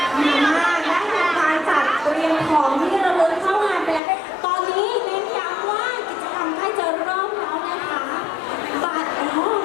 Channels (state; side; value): drops out; right; at 4.0 s